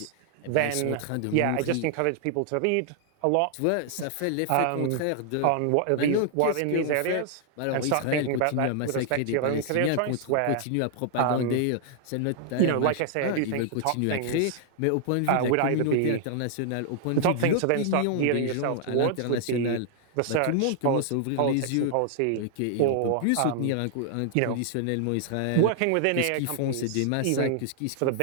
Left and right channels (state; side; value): different; both; correlation -0.01